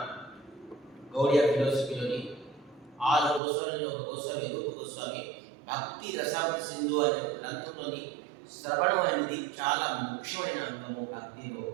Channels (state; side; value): drops out; left; at 3.4 s